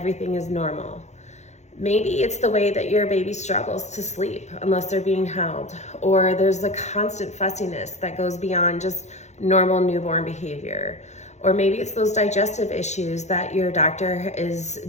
is normal. Maybe it's the way that your baby struggles to sleep unless they're being held, or there's the constant fussiness that goes beyond just normal newborn behavior. Or maybe it's those digestive issues that your doctor is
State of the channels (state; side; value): late; right; 0.33 ms